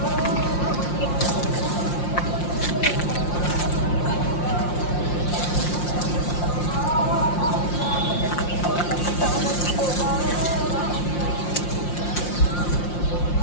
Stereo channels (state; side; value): late; right; 5.7 ms